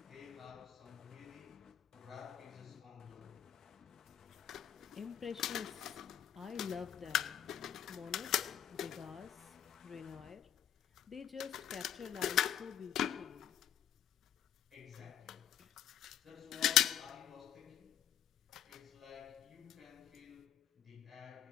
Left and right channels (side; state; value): right; quieter; 9.9 dB